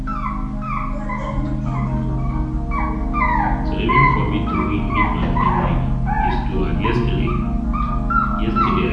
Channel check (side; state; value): both; identical; correlation 1.00